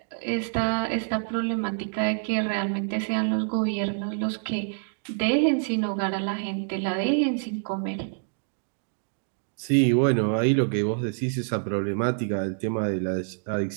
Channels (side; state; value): left; silent; digital silence